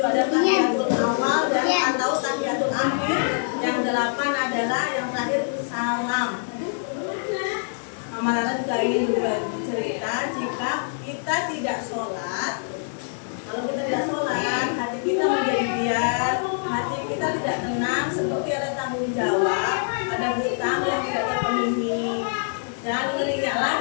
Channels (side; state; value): right; silent; 61 dB below the other